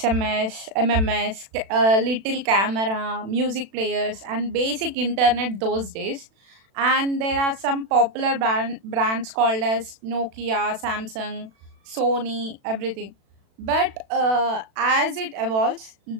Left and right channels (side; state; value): left; late; 36 ms